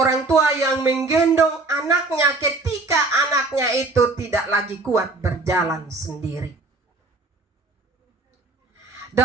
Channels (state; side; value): quieter; left; 3.3 dB